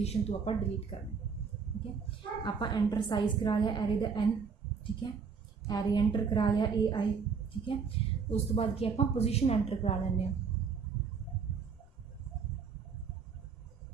तो आपां डिलीट करना, ठीक है। आपां एंटर साइज़ करा लिया एरे दा n, ठीक है। एरे एंटर करा लिया ए आई, ठीक है। उस तो बाद की आपां पोजीशन एंटर करा लैंदे हां,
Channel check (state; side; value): quieter; left; 5.8 dB